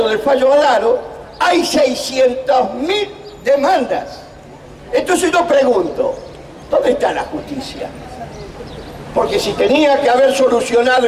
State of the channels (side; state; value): both; identical; correlation 1.00